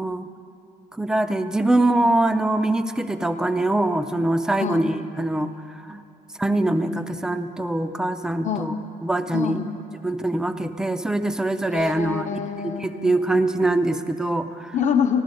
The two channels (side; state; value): both; normal; correlation 0.85